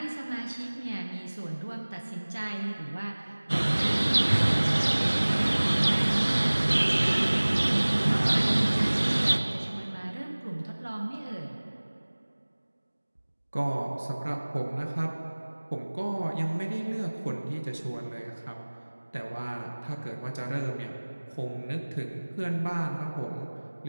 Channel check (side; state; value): both; inverted; correlation -1.00